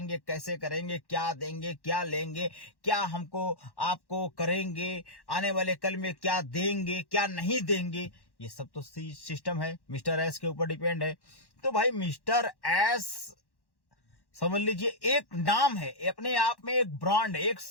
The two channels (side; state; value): right; late; 1.1 ms